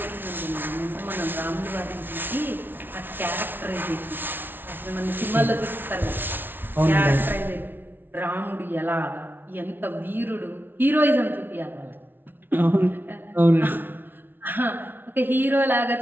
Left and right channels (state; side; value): late; left; 0.098 ms